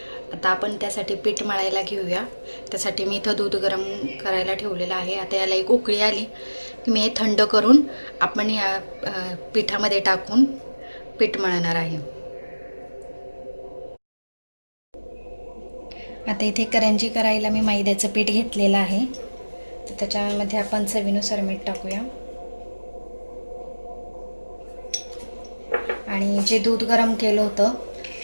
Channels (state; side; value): inverted; both; correlation -1.00